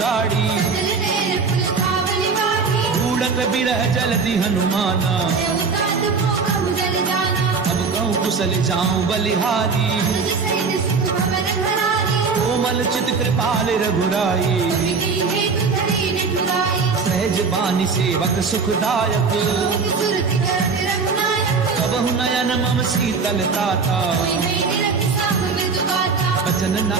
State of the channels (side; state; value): left; quieter; 4.9 dB